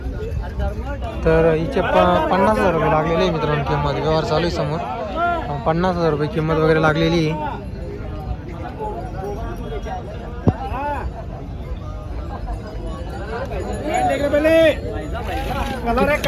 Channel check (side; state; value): both; identical; correlation 1.00